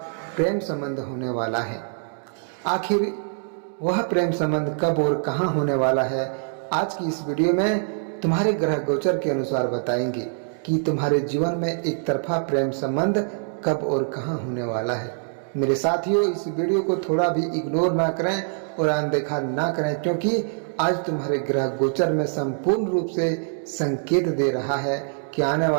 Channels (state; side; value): silent; left; digital silence